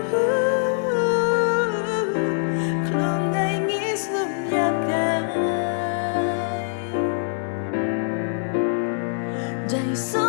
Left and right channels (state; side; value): silent; right; 63 dB below the other